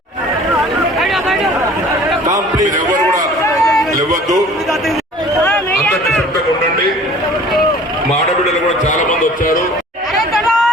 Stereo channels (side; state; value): both; normal; correlation 0.48